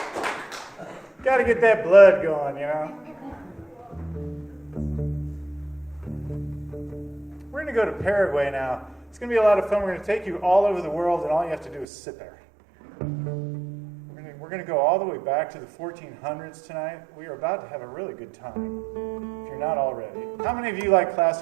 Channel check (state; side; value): drops out; left; at 11.9 s